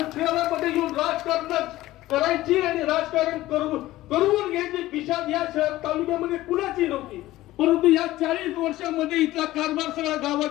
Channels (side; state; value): right; quieter; 16.4 dB